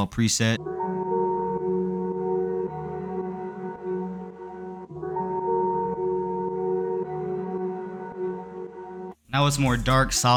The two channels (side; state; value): both; identical; correlation 1.00